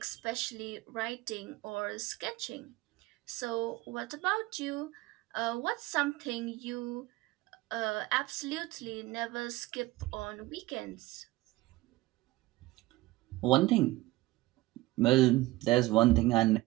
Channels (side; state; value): left; quieter; 18.9 dB